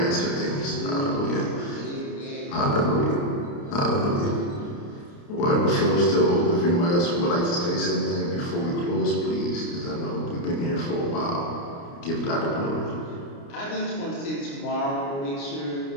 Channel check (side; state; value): right; late; 29 ms